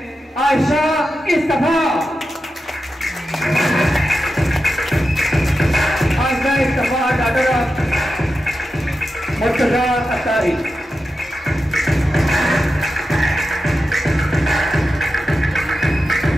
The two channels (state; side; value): normal; both; correlation 0.90